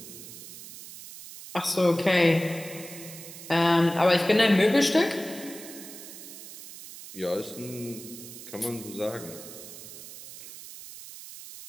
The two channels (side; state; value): right; noise; hiss, 14 dB below the sound